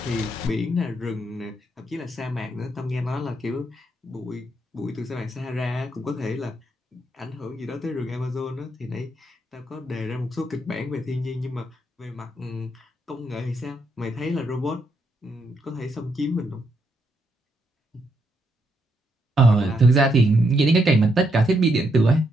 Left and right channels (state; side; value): normal; both; correlation 0.78